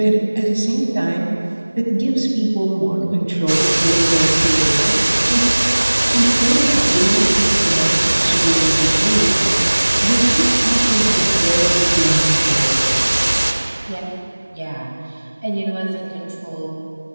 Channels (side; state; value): both; inverted; correlation -1.00